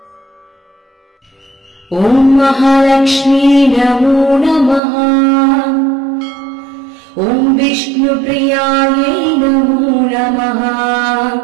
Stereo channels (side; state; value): left; drops out; at 4.8 s